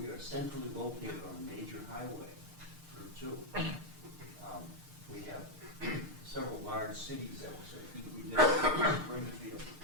are centrally located on a major highway, Route 2. We have several large cities that will say, we live Springfield,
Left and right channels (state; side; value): late; left; 6.6 ms